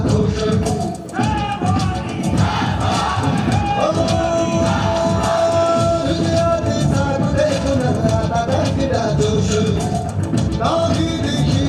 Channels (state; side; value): identical; both; correlation 1.00